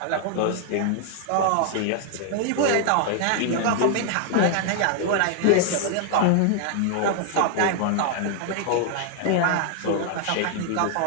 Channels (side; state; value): both; different; correlation 0.00